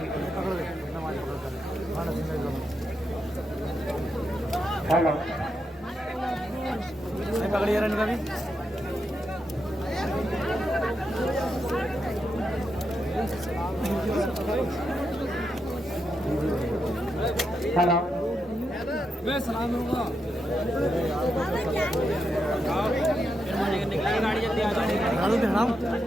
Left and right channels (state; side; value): normal; both; correlation 0.84